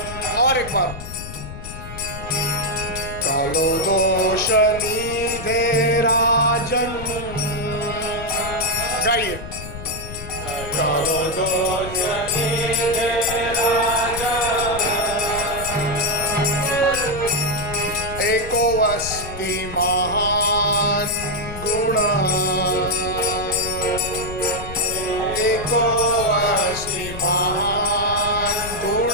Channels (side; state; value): left; noise; rumble, 10 dB below the sound